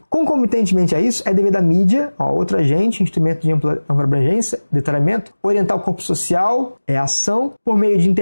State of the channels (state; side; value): inverted; both; correlation -1.00